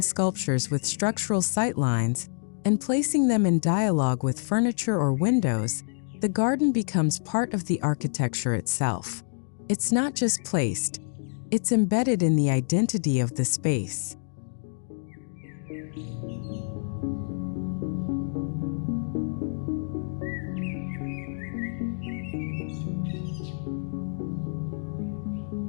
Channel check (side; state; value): right; silent; digital silence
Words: sculptures with structural sightlines and placing them in dialogue with furniture or windows, the garden becomes part of the architecture itself. It's not just placed, it's embedded in the identity of the space.